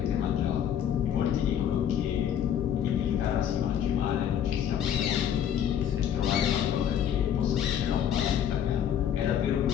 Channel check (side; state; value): right; quieter; 9.5 dB